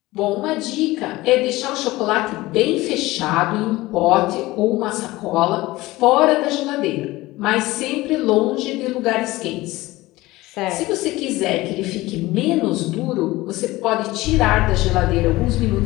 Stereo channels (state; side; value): quieter; right; 19.1 dB